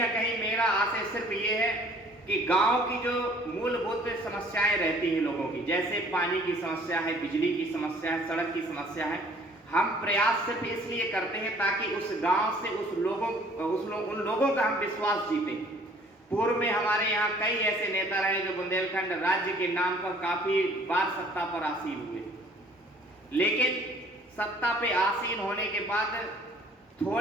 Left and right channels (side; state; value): both; normal; correlation 0.55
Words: कहीं मेरा आशय सिर्फ ये है कि गांव की जो मूलभूत समस्याएं रहती हैं लोगों की, जैसे पानी की समस्या है, बिजली की समस्या है, सड़क की समस्या है, हम प्रयास सिर्फ इसलिए करते हैं ताकि उस गांव से उन लोगों का हम विश्वास जीतें। पूर्व में हमारे यहाँ कई ऐसे नेता रहे जो बुंदेलखंड राज्य के नाम पर काफी बार सत्ता पर आसीन हुए, लेकिन सत्ता पे आसीन होने के बाद